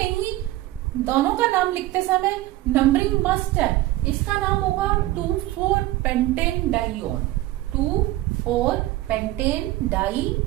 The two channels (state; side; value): quieter; left; 16.7 dB